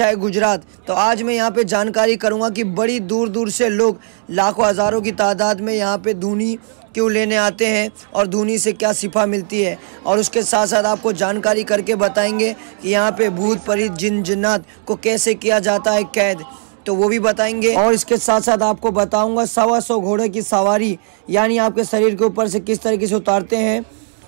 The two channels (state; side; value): silent; left; digital silence